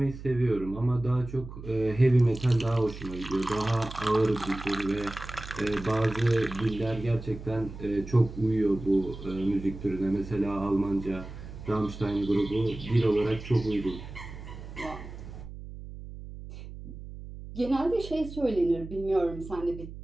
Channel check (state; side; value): noise; right; hum, 12 dB below the sound